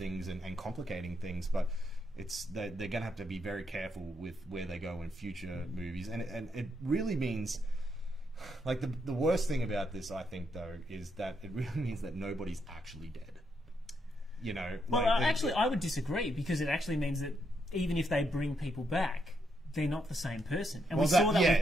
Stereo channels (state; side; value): normal; both; correlation 0.78